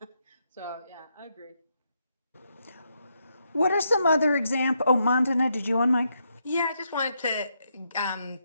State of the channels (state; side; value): inverted; both; correlation -0.79